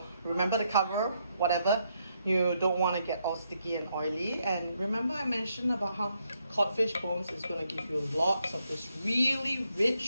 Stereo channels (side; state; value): both; inverted; correlation -0.77